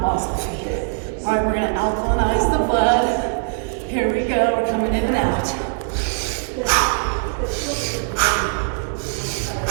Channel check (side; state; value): left; silent; digital silence